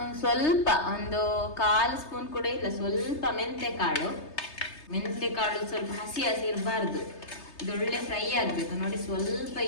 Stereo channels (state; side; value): late; right; 3.3 ms